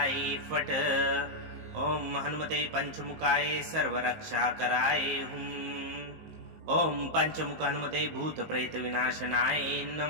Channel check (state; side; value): late; left; 19 ms